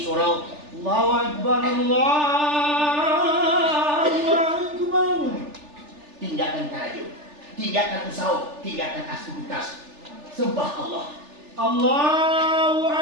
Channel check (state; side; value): late; left; 3.4 ms